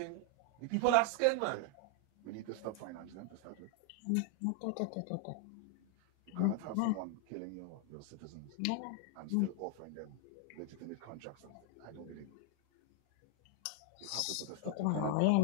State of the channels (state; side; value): different; both; correlation 0.00